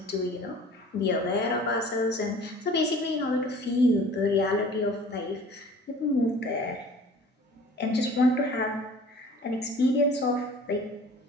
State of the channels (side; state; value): both; normal; correlation 0.47